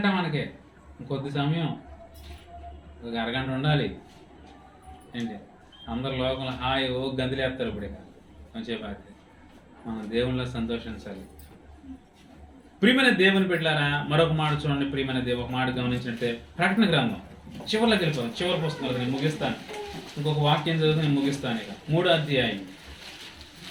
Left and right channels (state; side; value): identical; both; correlation 1.00